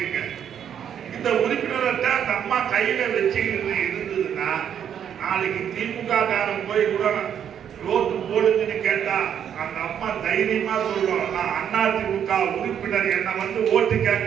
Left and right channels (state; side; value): quieter; left; 8.9 dB